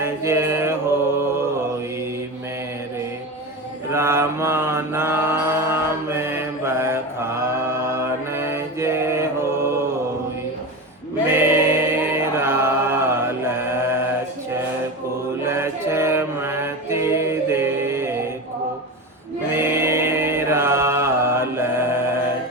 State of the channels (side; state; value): both; normal; correlation 0.24